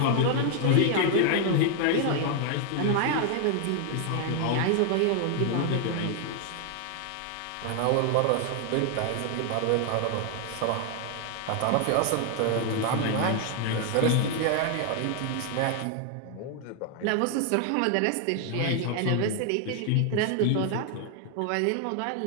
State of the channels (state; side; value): different; both; correlation 0.00